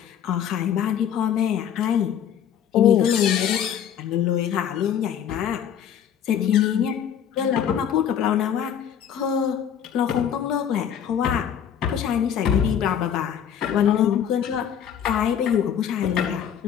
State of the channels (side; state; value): right; quieter; 8.9 dB